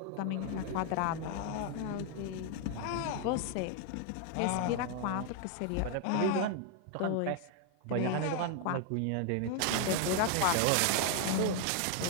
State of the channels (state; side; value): different; both; correlation 0.01